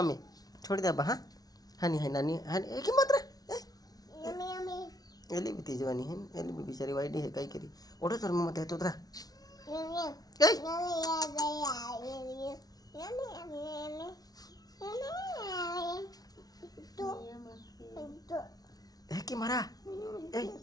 मी छोडी द्या बा हा हानी हाय नानी हानी एक मात्र एली भी तिजवानी है एली भी बिचारी वाईट है काही करी ओढ तर मग येतो तर है की मारा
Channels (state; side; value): late; right; 0.19 ms